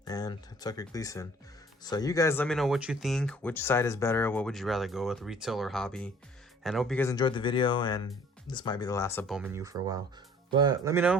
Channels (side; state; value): both; normal; correlation 0.54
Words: and Tucker Gleason. So you guys let me know what you think, which side is better, what would you rather go with, retail or hobby. And I hope you guys enjoyed the video, and this might be the last of Bowman U for a while. But let me